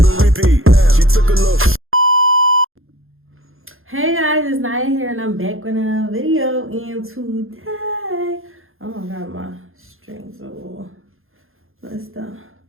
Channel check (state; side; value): late; left; 0.60 ms